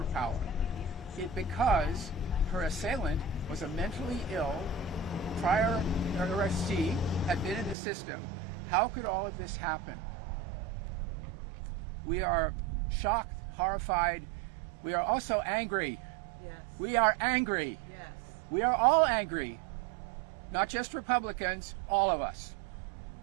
Because her assailant was a mentally ill, prior arrestee, had been in the system. How could all of this happen? We are shocked, horrified. We are also angry. Yes. We are angry. Yes. We are all angry. Not just Republicans, all of us.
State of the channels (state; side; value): drops out; left; at 7.8 s